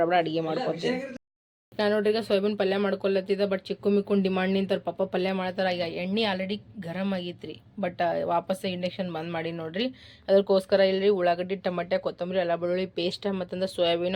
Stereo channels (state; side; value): identical; both; correlation 1.00